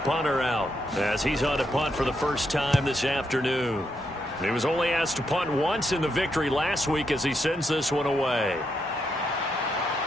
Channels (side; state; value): both; normal; correlation 0.80